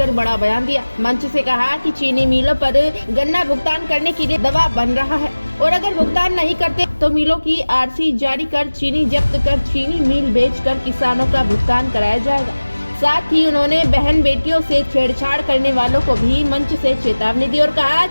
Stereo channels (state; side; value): inverted; both; correlation -1.00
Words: बड़ा बयान दिया। मंच से कहा कि चीनी मिलों पर गन्ना भुगतान करने के लिए दबाव बन रहा है और अगर भुगतान नहीं करते तो मिलों की आरसी जारी कर चीनी जब्त कर चीनी मिल बेचकर किसानों का भुगतान कराया जाएगा। साथ ही उन्होंने बहन बेटियों से छेड़छाड़ करने वालों को भी मंच से चेतावनी दी और कहा